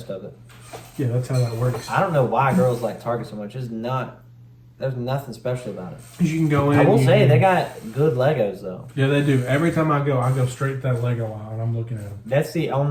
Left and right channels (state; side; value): identical; both; correlation 1.00